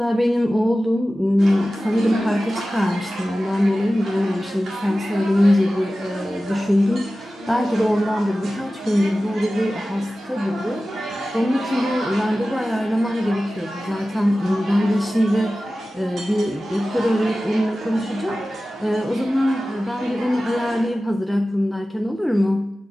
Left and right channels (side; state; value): both; normal; correlation 0.95